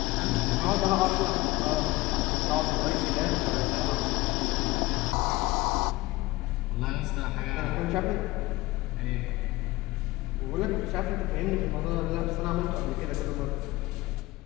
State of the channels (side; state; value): right; quieter; 19.3 dB